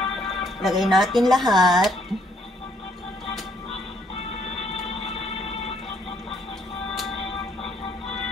Lagay natin lahat.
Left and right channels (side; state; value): both; normal; correlation 0.68